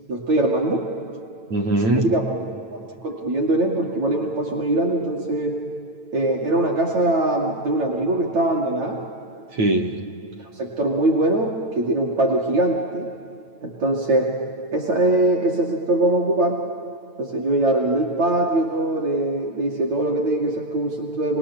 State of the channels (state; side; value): late; left; 9.0 ms